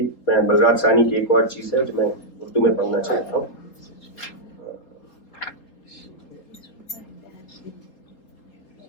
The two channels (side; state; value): right; late; 3.8 ms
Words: मैं बलराज सानी की एक और चीज़ है जो मैं उर्दू में पढ़ना चाहता हूँ.